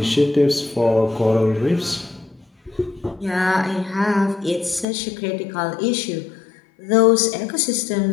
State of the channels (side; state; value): right; drops out; at 4.9 s